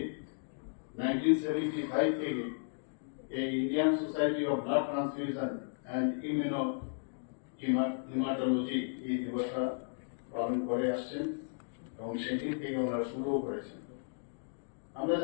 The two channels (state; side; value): silent; right; digital silence